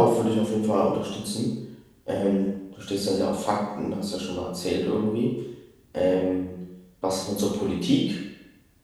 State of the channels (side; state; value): both; identical; correlation 1.00